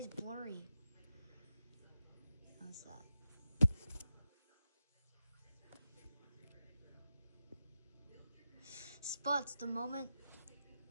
blurry? What's that? Spuds the moment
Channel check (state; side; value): inverted; both; correlation -0.89